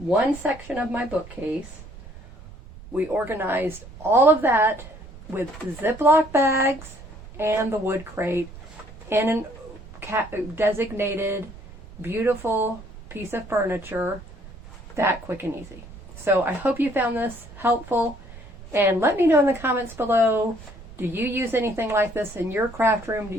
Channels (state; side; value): noise; right; rumble, 17 dB below the sound